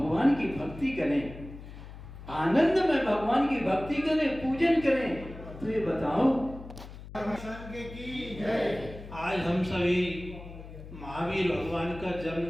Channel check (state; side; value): noise; left; hum, 14 dB below the sound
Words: की भक्ति करें, आनंद में भगवान की भक्ति करें, पूजन करें। तो ये बताओ, आज हम सभी महावीर भगवान का